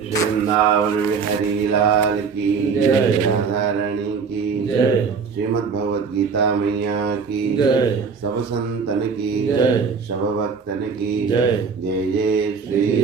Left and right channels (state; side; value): quieter; left; 5.6 dB